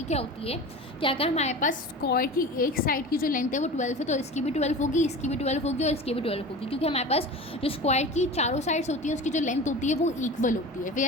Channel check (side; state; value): both; normal; correlation 0.34